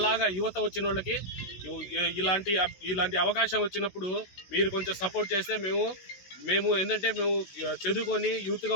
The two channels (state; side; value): late; right; 16 ms